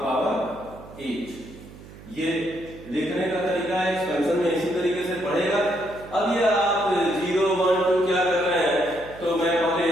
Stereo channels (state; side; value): noise; right; hum, 18 dB below the sound